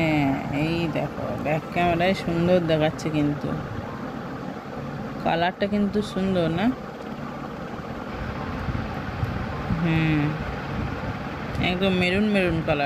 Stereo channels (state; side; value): identical; both; correlation 1.00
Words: এই দেখো ব্যাক ক্যামেরায় সুন্দর দেখাচ্ছে, কিন্তু কালারটা কিন্তু সুন্দর না? একদম মেরুন মেরুন